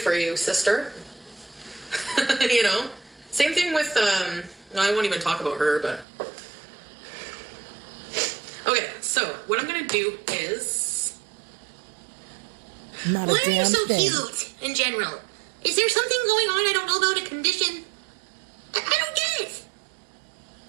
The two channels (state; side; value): drops out; left; at 6.1 s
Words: For you, sister. Same thing with no, I won't even talk about her, but okay, so what I'm gonna do is not a Why damn are you so thing. cute in general? Is there something going on I don't know about, a condition? I don't get it.